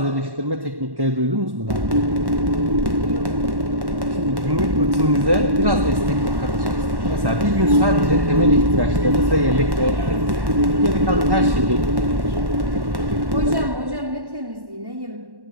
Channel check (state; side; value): late; left; 1.1 ms